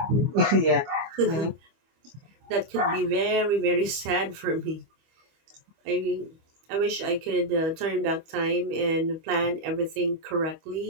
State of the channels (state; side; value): late; left; 25 ms